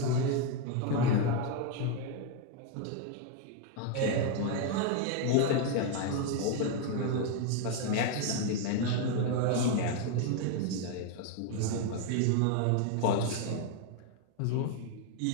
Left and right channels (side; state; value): both; different; correlation 0.01